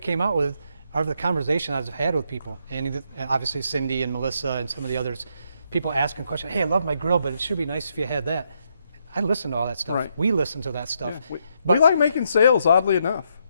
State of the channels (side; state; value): both; inverted; correlation -0.77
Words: out with are the conversation I've had with people. And obviously Cindy and Melissa and some of the others, people asking questions. Hey, I love my grill, but it should be nice if you had that. I listen to all that stuff. Right. We listen to that stuff. Yeah, we like making sales, oddly enough.